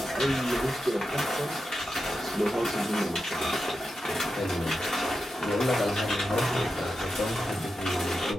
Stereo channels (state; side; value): normal; both; correlation 0.89